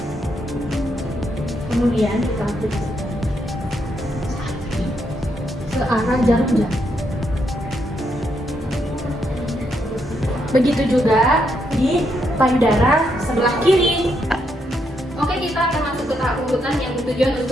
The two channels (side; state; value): both; normal; correlation 0.78